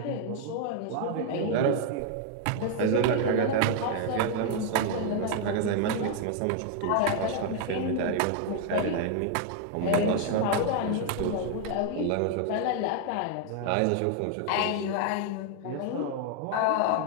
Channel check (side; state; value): both; different; correlation 0.00